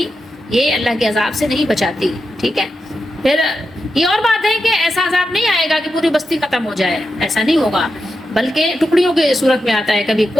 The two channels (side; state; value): both; normal; correlation 0.88